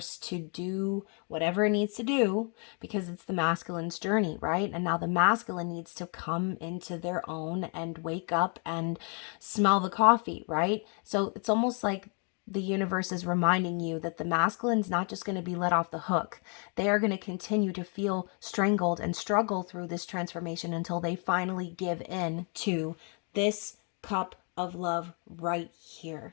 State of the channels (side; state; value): right; quieter; 38.1 dB